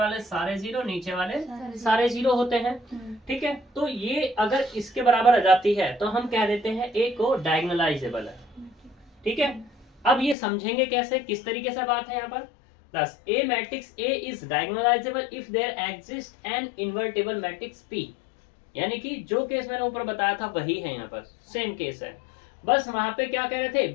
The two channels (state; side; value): drops out; right; at 10.4 s